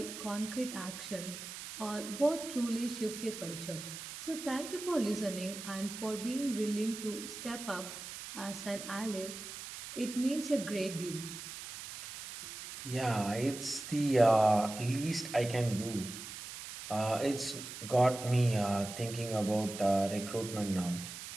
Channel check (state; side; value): noise; right; hiss, 10 dB below the sound